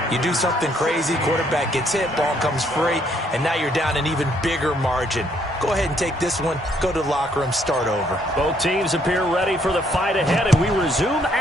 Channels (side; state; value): both; normal; correlation 0.69